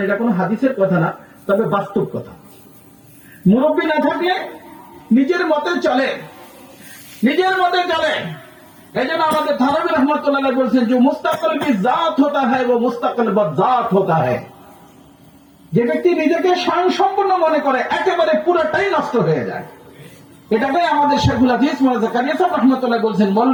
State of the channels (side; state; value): both; identical; correlation 1.00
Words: এটা কোনো হাদিসের কথা না, তবে বাস্তব কথা। মুরব্বী না থাকলে নিজের মতে চলে, নিজের মতে চলে। এই জন্য আমাদের থানভী রহমতুল্লাহ বলছেন যে মুস্তাকিল কি জাত হতা হ্যায় ও মুস্তাকিল বজাত হতা হ্যায়। যে ব্যক্তি নিজেকে স্বয়ংসম্পূর্ণ মনে করে একেবারে পুরোটাই নষ্ট হয়ে যায়। এটাকেই আমাদের শেখুল হাদিস মৌলানা জাকারিয়া সাহেব রহমতুল্লাহ বলছেন,